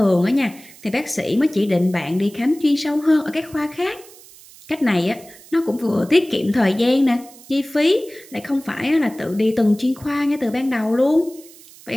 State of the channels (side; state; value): right; noise; hiss, 22 dB below the sound